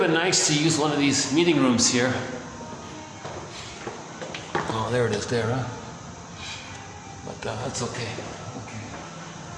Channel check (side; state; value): both; identical; correlation 1.00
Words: nice to use one of these meeting rooms here. Oh, there it is there, huh? But that's okay.